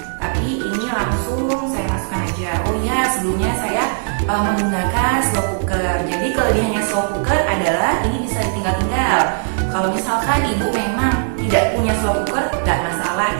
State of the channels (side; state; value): left; silent; 62 dB below the other